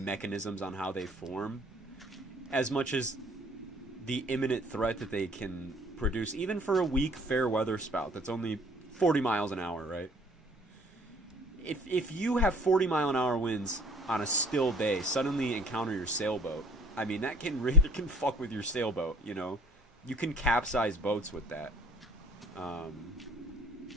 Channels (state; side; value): normal; both; correlation 0.54